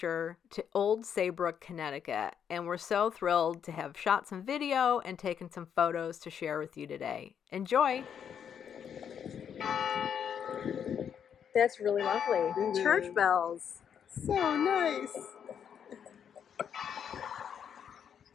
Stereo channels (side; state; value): right; quieter; 8.1 dB